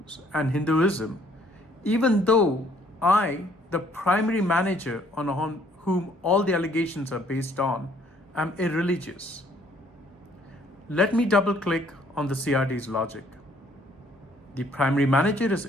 and Hinduism, even though I, the primary manager on whom all the allegations are based on, am irreligious. Let me double click on the CRD's logic. The primary manager is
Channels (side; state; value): both; normal; correlation 0.62